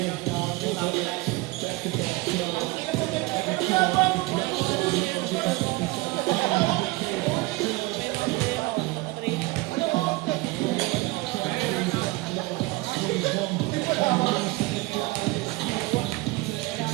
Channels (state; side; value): quieter; left; 21.8 dB